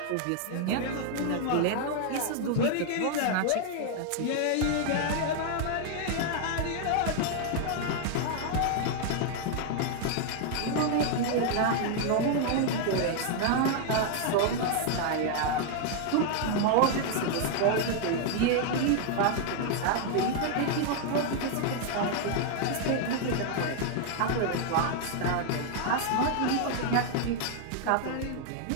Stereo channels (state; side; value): different; both; correlation 0.00